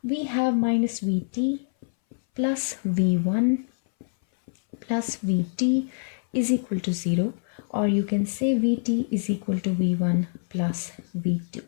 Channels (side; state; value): right; silent; 60 dB below the other